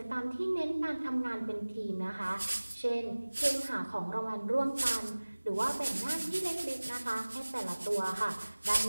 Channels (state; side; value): inverted; both; correlation -1.00